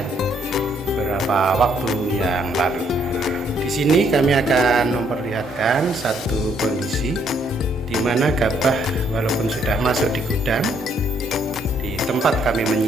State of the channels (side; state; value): both; normal; correlation 0.69